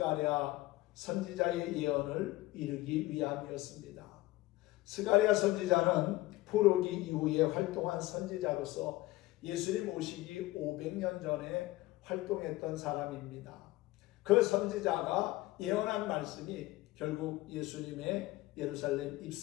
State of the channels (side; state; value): right; quieter; 18.6 dB